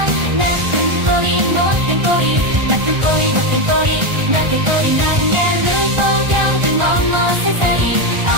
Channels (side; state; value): left; late; 1.4 ms